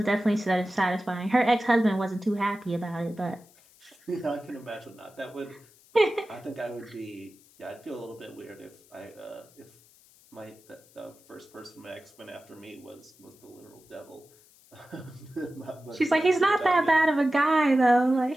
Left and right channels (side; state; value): left; noise; hiss, 28 dB below the sound